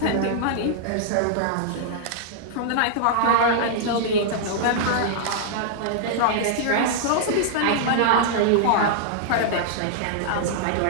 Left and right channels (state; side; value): different; both; correlation -0.01